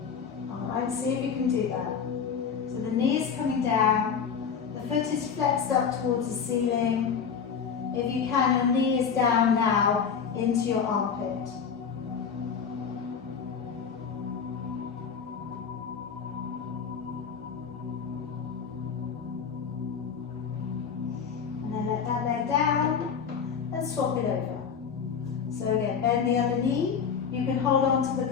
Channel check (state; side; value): quieter; right; 6.6 dB